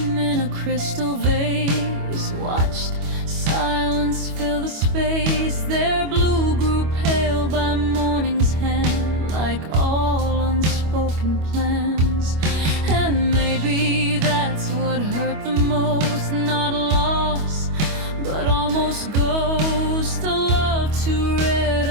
in a crystal vase, watched silence fill the space. Their blue grew pale by morning's hand, like all unspoken plans. And maybe that's what hurt the most, not loss, but almost ghost. A love too rare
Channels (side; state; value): left; late; 25 ms